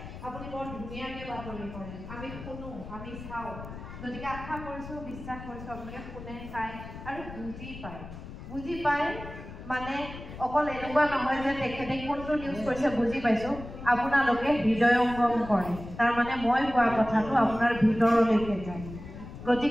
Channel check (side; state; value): left; noise; rumble, 12 dB below the sound